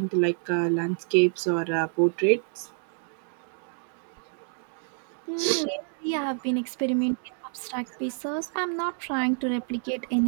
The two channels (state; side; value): silent; left; 59 dB below the other